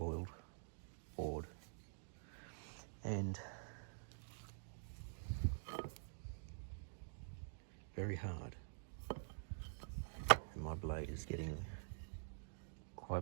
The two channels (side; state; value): left; silent; digital silence